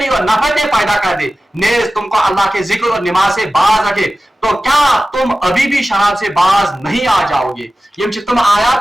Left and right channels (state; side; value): normal; both; correlation 0.95